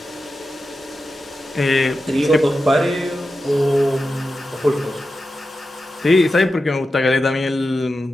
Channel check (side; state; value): both; normal; correlation 0.91